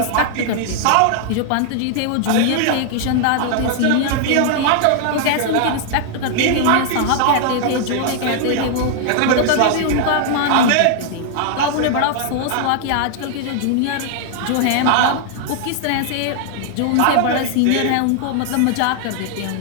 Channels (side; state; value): both; different; correlation 0.00